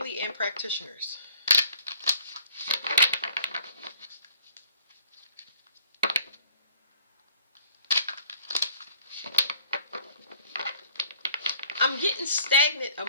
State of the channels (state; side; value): inverted; both; correlation -0.56